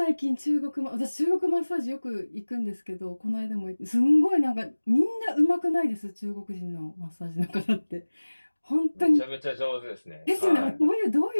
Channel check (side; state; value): both; inverted; correlation -1.00